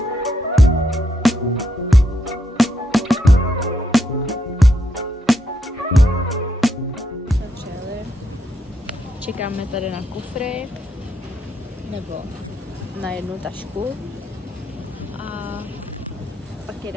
Čekáme tady na kufry, nebo na jednu tašku a pak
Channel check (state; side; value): normal; both; correlation 0.79